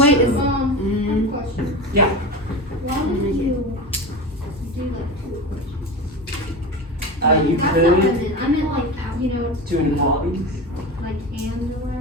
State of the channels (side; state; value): both; normal; correlation 0.26